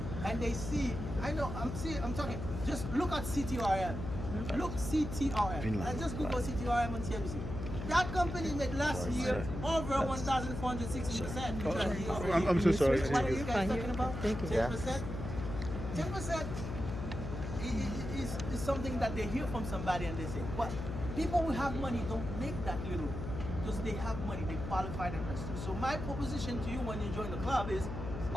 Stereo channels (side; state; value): left; noise; hum, 6 dB below the sound